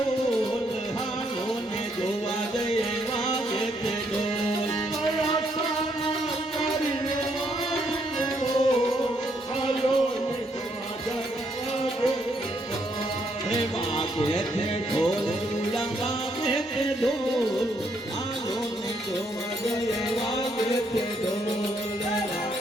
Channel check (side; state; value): both; normal; correlation 0.73